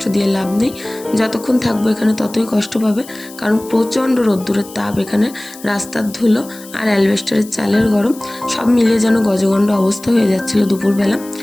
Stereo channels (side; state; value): left; noise; hiss, 19 dB below the sound